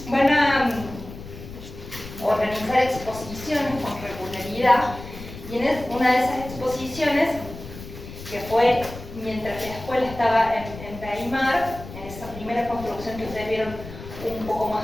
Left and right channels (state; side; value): noise; left; rumble, 13 dB below the sound